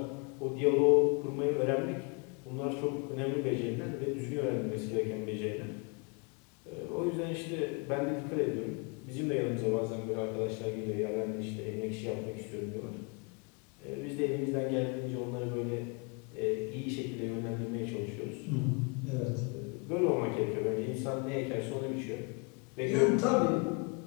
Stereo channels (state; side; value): quieter; right; 33.1 dB